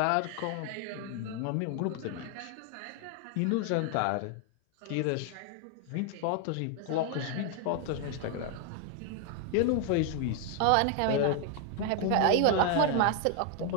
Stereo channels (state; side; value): different; both; correlation 0.00